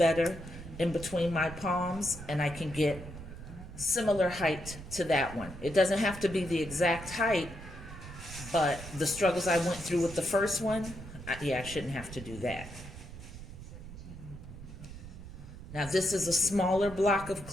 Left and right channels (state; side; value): noise; right; rumble, 13 dB below the sound